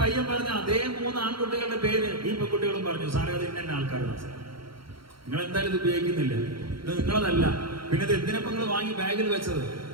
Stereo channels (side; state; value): left; late; 0.74 ms